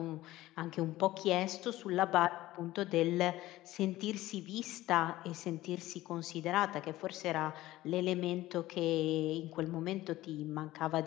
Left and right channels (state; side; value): quieter; right; 16.4 dB